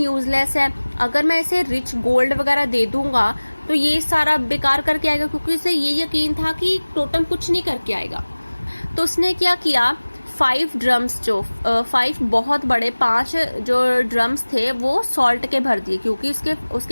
है, अगर मैं इसे रिच गोल्ड वगैरह दे दूंगा तो ये सारा बेकार करके आएगा, क्योंकि उसे ये यकीन था कि टोटम कुछ नहीं करके आएगा। तो उसने क्या किया, 5 ड्रम्स जो 5 बहुत बड़े 5 जो ड्रम्स थे वो सॉल्ट के भर दिए, क्योंकि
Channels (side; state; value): both; inverted; correlation -1.00